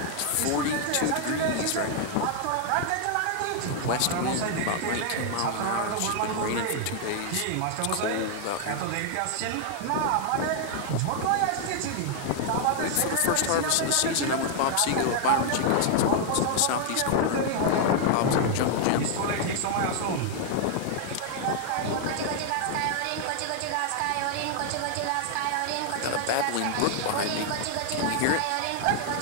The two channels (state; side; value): different; both; correlation 0.00